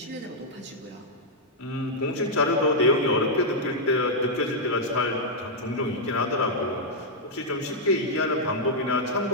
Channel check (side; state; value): both; normal; correlation -0.05